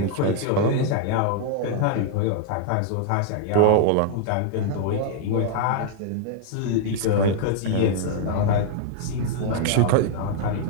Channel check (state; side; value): different; both; correlation -0.01